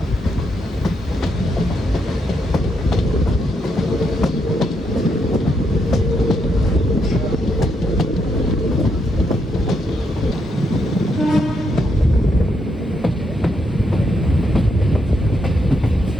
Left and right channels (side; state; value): both; normal; correlation 0.79